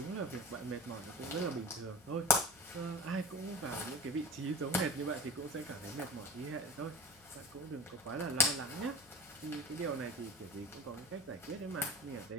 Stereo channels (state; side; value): noise; left; hum, 25 dB below the sound